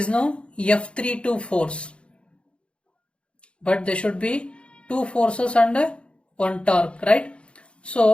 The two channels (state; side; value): late; right; 0.058 ms